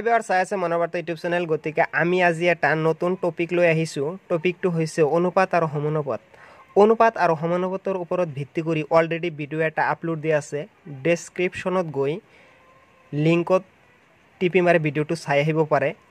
ভিউয়াৰ্স, চাই আছে মনোবাৰ্তা ইউটিউব চেনেল। গতিকে আমি আজি এটা নতুন টপিক লৈ আহিছোঁ। টপিকটো হৈছে অনুপাত আৰু সমানুপাত। অনুপাত আৰু সমানুপাতৰ ওপৰত ভিত্তি কৰি অলৰেডি ভিডিঅ' এটা আপলোড দিয়া আছে। ডেছক্ৰিপশ্যনত গৈ লিংকত টিপি মাৰি ভিডিঅ'টো চাই আহিব পাৰে।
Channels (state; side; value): identical; both; correlation 1.00